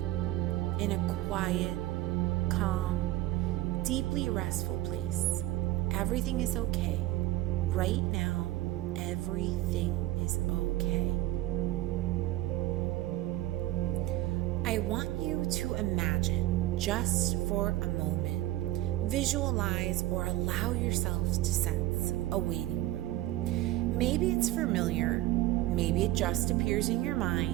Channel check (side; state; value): left; quieter; 16.0 dB